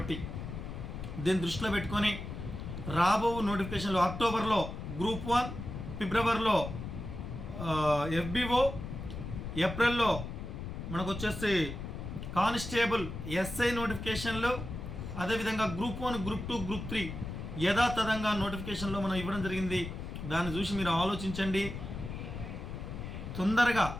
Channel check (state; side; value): noise; left; rumble, 7 dB below the sound